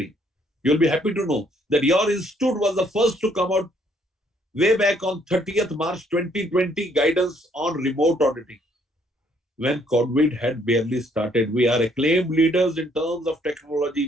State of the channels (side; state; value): both; normal; correlation 0.66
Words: You'll be happy to know that your institute was the first to come out way back on 30th March 2020 guidance on remote auditing. When COVID had barely started, we are acclaimed leaders in terms of